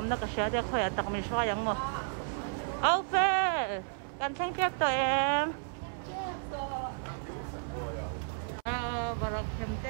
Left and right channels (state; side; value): silent; left; 56 dB below the other